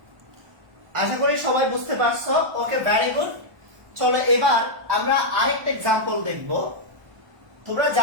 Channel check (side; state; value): left; late; 1.1 ms